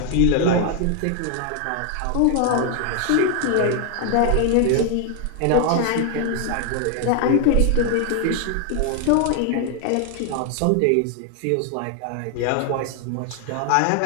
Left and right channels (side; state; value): both; different; correlation 0.00